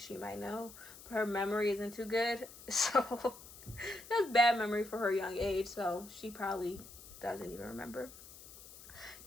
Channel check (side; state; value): left; noise; hiss, 17 dB below the sound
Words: might know, but her memory isn't too good, so that's bad memory for her young age, so she probably doesn't even remember.